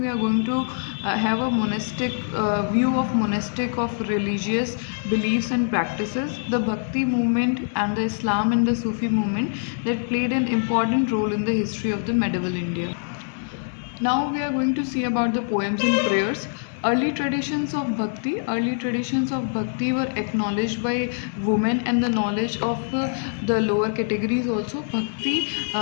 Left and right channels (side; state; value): right; silent; 63 dB below the other